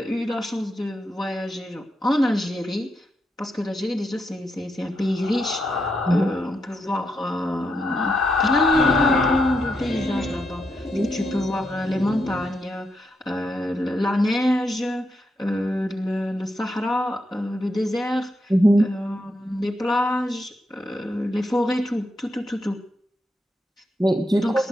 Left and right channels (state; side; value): normal; both; correlation 0.83